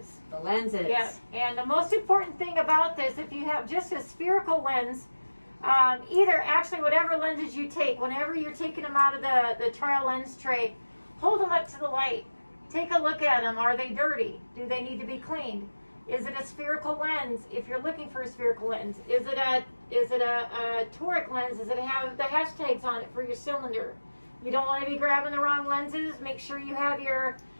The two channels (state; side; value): inverted; both; correlation -1.00